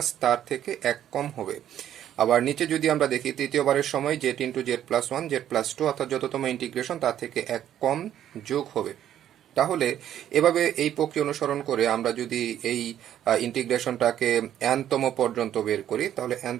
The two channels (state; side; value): quieter; left; 11.0 dB